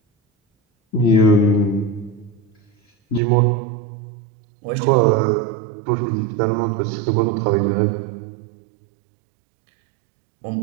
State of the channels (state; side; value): drops out; left; at 3.2 s